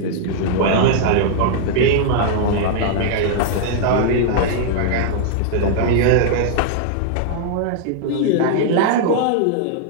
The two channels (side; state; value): both; different; correlation -0.01